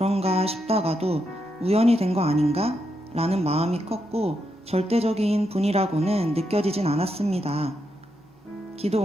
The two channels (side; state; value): both; normal; correlation 0.82